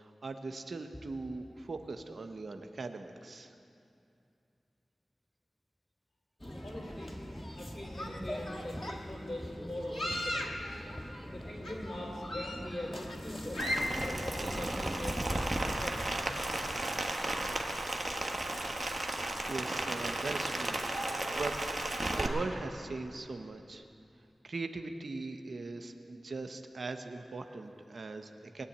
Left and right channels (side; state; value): both; normal; correlation 0.91